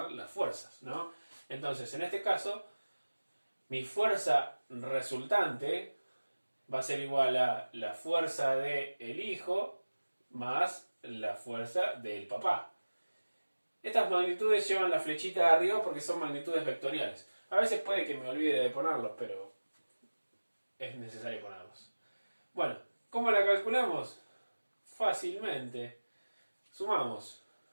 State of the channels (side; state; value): both; inverted; correlation -1.00